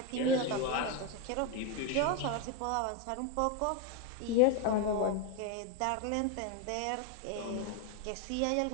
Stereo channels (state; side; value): different; both; correlation 0.02